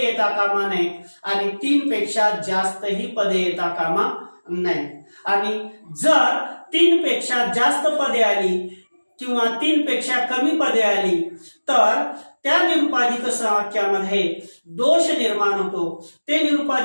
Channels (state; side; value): inverted; both; correlation -1.00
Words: येता कामा नये आणि 3 पेक्षा जास्तही पदे येता कामा नये। आणि जर 3 पेक्षा जास्त पदे आली किंवा 3 पेक्षा कमी पदे आली तर त्या निरुपाधिक संवाक्यामध्ये दोष निर्माण होतो, ते